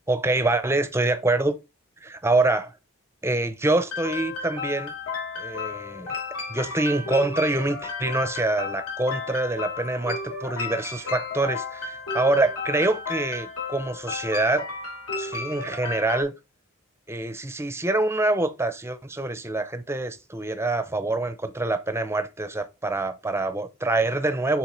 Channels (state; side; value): normal; both; correlation 0.55